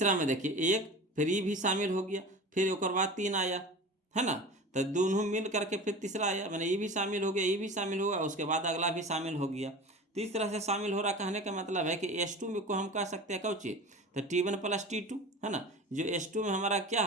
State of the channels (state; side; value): normal; both; correlation 0.35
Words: में देखिए 1, फिर ये भी शामिल हो गया, फिर एक बाद 3 आया, है ना, तो दोनों मिल करके फिर तीसरा आया, मैंने ये भी शामिल हो गया, ये भी शामिल होगा, उसके बाद अगला भी शामिल हो गया। तो इस तरह से शामिल हो रहा, कहने का मतलब है कि S2 में को हम कह सकते हैं कौची, तो T1 प्लस T2, है ना। जो S2 में हमारा क्या